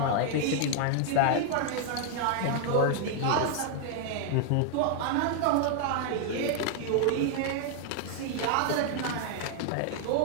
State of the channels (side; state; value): both; different; correlation 0.00